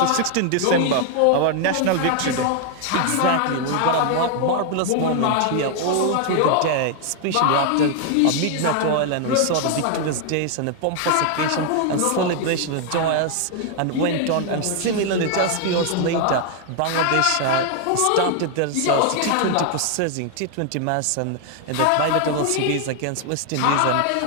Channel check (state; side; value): different; both; correlation 0.00